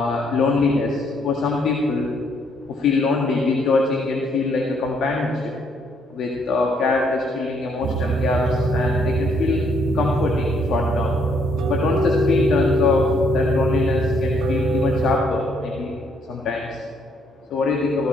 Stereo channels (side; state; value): both; normal; correlation 0.70